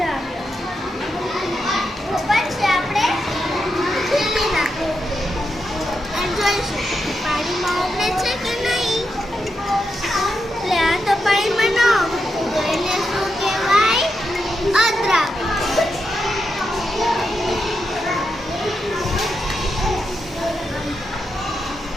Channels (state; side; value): normal; both; correlation 0.85